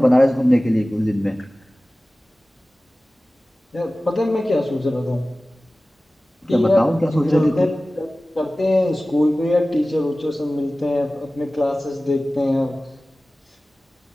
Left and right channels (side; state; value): both; normal; correlation 0.97